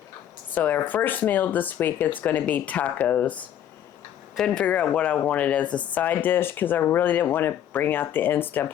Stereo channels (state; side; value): quieter; right; 10.5 dB